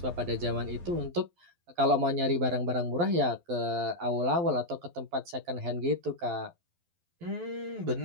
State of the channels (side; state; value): left; late; 12 ms